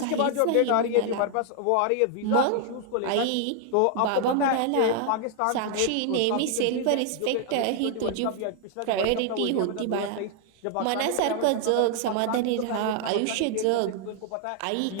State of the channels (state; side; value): different; both; correlation 0.00